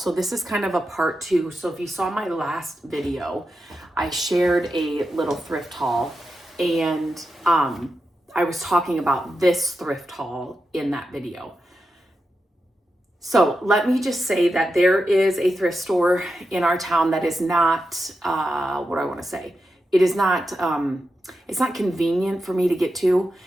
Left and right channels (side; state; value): both; normal; correlation 0.88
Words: this is kind of a part two. So if you saw my last video, I shared a little thrift haul and I was talking about this thrift haul in that video. So let me just say that there is a thrift store in our town that is not, what do I want to say? It is not, it's not convenient for me to get to.